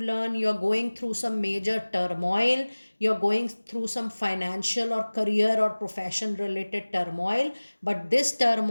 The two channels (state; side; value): inverted; both; correlation -1.00